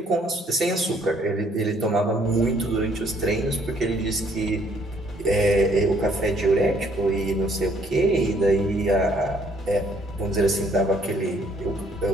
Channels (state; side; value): normal; both; correlation 0.65